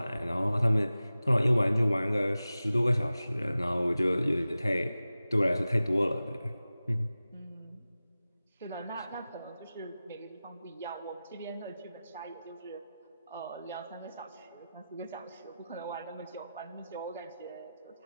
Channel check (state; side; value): inverted; both; correlation -0.95